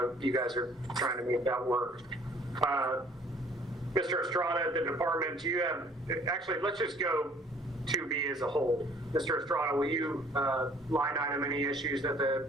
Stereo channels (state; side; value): normal; both; correlation 0.56